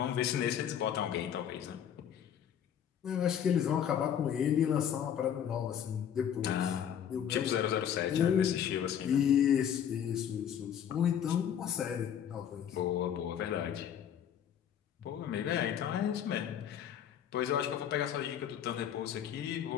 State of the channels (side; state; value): right; quieter; 9.1 dB